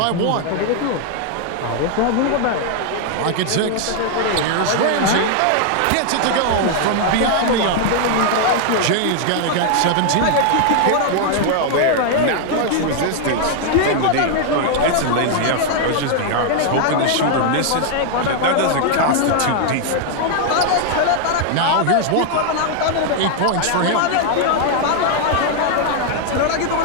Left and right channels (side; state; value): both; different; correlation 0.00